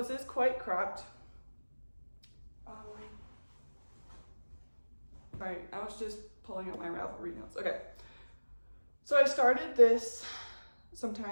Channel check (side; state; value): both; inverted; correlation -1.00